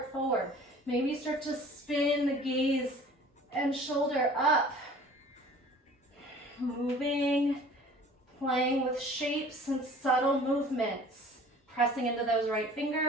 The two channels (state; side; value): normal; both; correlation 0.48